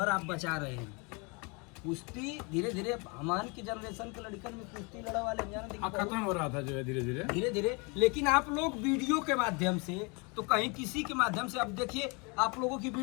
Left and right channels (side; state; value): right; quieter; 30.7 dB